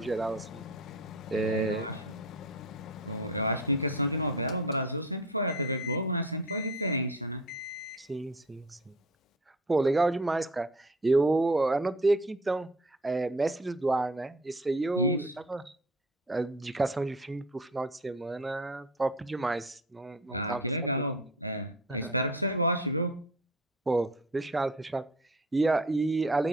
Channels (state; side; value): normal; both; correlation 0.39